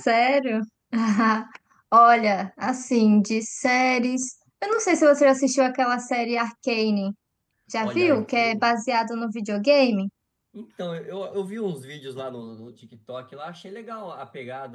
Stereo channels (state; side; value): identical; both; correlation 1.00